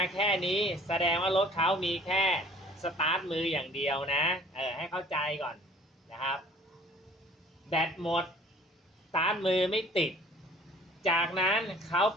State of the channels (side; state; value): both; normal; correlation 0.53